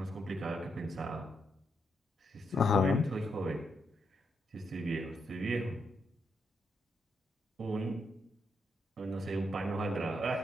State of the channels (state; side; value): normal; both; correlation 0.80